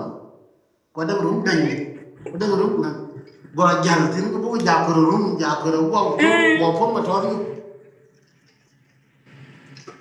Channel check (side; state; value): both; identical; correlation 1.00